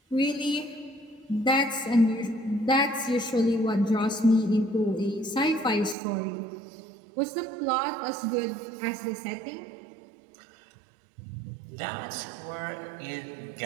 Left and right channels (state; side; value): drops out; left; at 6.0 s